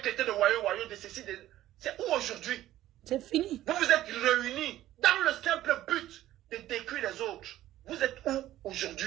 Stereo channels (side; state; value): left; quieter; 13.9 dB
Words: traité de voyous, de ceci, de... C'est où aujourd'hui? C'est fini. Vous vous êtes réunis dans le simple but de détruire les autres. Vous êtes où